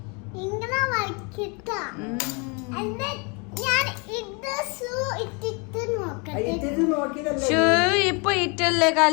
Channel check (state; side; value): quieter; right; 32.2 dB